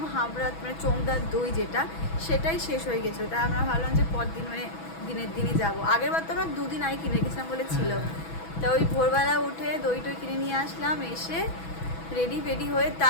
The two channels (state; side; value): late; right; 6.1 ms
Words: হাবড়া, মানে চোংদার দই যেটা, সেটাই শেষ হয়ে গেছিলো। তাই আমরা ভাবলাম যে পরদিন মানে দিনের দিনই যাবো। আগের বার তো আমরা 2 দিন আগে কিনে গেছিলাম বলে ছিল। তা ওই ভোরবেলা উঠে দই টই কিনে নিয়ে আসলাম, এসে রেডি হয়ে